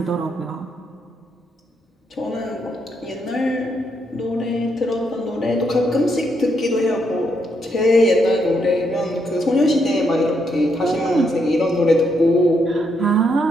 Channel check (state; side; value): normal; both; correlation 0.77